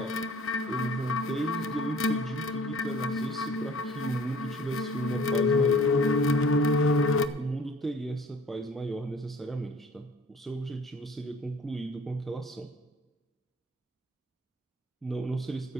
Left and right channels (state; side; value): normal; both; correlation 0.50